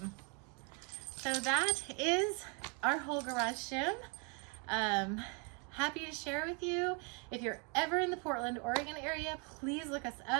So that is our whole garage gym. Happy to share with you. If you're ever in the Portland, Oregon area, please look us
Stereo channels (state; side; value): quieter; left; 35.0 dB